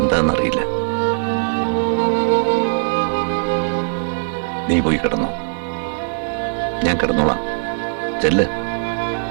നീ പോയി കിടന്നോ, ഞാൻ കിടന്നോളാം. ചെല്ല്.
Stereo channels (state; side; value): silent; left; digital silence